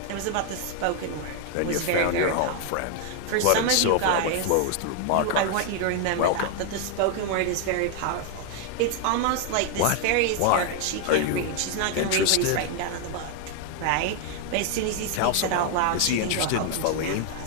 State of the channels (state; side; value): different; both; correlation 0.00